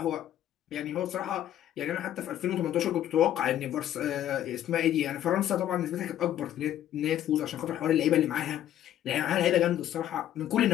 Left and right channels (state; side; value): quieter; right; 11.8 dB